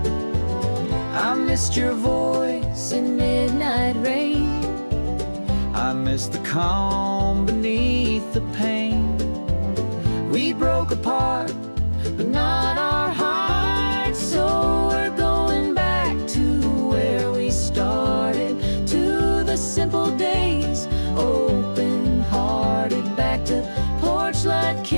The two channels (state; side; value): inverted; both; correlation -1.00